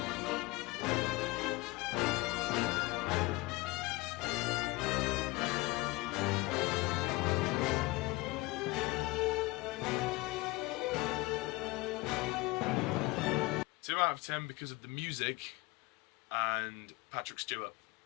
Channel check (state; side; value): quieter; right; 22.2 dB